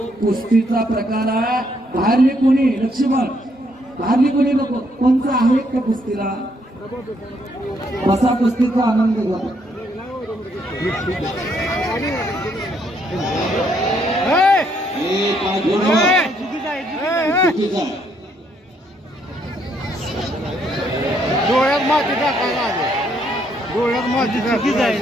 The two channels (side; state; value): both; normal; correlation 0.72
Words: कुस्तीचा प्रकार आहे बाहेरली कोणी लक्ष्मण बाहेरली कोणी नको कोणचं आहे का कुस्तीला बसा कुस्तीचा आनंद घ्या हे काय घेणं चुकीचं आहे डोळ्यात माती टाकायला डोळ्यात माती